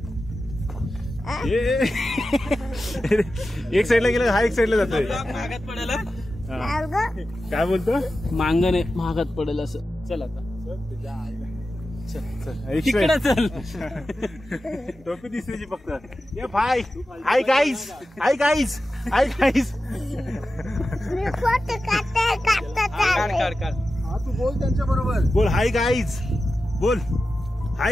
एक साईडला गेला, हा एक साईडला जातोय. महागात पडेल. काय बोलतो? मांगण आहे महागात पडेल असं. चल आता इकडे चल. टोपी दिसण्याची फक्त. ये भाई hi guys, hi guys, hi guys. हा तू बोल त्यांच्या बरोबर. बोल हाय गाईज, बोल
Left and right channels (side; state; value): both; normal; correlation 0.93